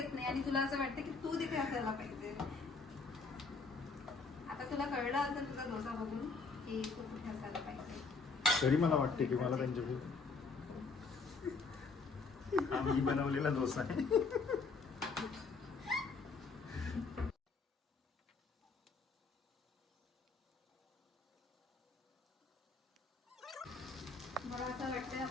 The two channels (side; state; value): right; quieter; 4.3 dB